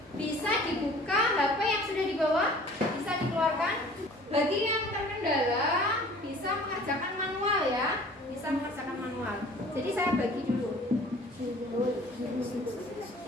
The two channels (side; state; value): both; normal; correlation 0.49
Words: Bisa dibuka HP yang sudah dibawa, bisa dikeluarkan. Bagi yang terkendala bisa mengerjakan manual ya, bisa mengerjakan manual. Jadi saya bagi dulu.